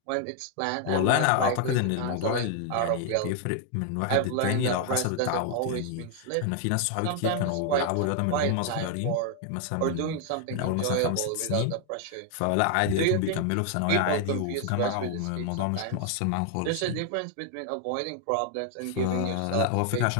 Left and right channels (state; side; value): different; both; correlation 0.00